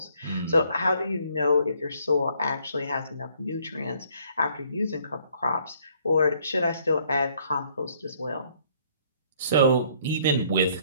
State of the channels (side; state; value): both; inverted; correlation -0.64